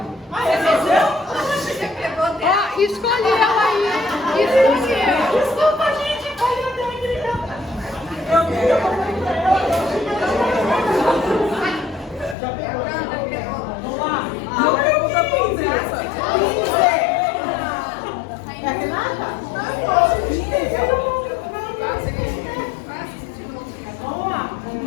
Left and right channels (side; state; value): right; drops out; at 12.4 s